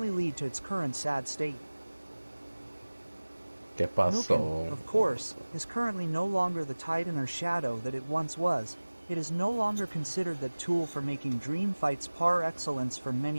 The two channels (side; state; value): both; inverted; correlation -1.00